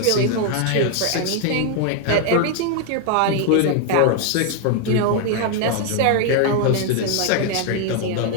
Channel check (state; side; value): different; both; correlation 0.00